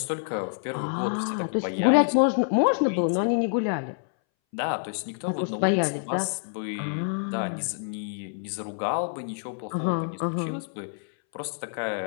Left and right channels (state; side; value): silent; right; 60 dB below the other